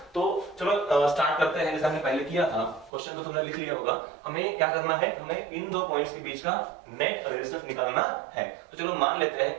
तो चलो स्टार्ट करते हैं, जैसे हमने पहले किया था। क्वेश्चन तो तुमने लिख लिया होगा। हमें क्या करना है, हमें इन दो पॉइंट्स के बीच का नेट रेजिस्टेंस निकालना है। तो चलो मान लेते हैं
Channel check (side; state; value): left; drops out; at 2.9 s